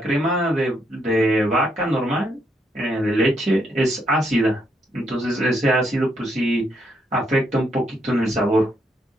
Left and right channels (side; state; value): both; normal; correlation 0.76